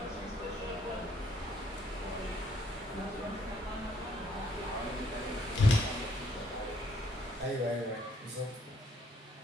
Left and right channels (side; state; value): both; normal; correlation 0.68